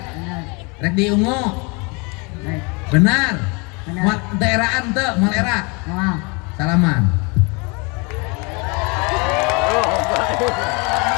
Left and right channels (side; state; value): right; quieter; 30.4 dB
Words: Benar. rek diungu, Baik. benar, Benar. mal daeraan teu, mal era, Mau. salaman.